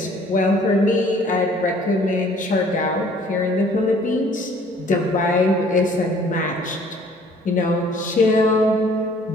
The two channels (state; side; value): normal; both; correlation 0.56